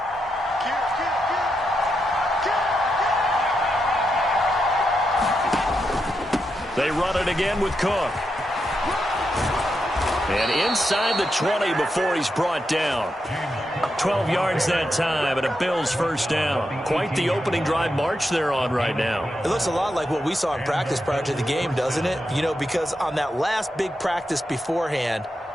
They run it again with Cook. And inside the 20 before he's brought down. 12 yards that time and a Bills first down. Quite the opening drive march they're on right now. It looks a lot like what we saw in practice prior to the game, doesn't it? You know, because on that last big practice beforehand,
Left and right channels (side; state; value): both; normal; correlation 0.85